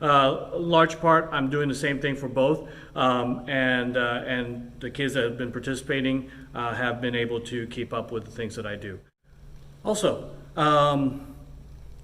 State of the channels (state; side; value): identical; both; correlation 1.00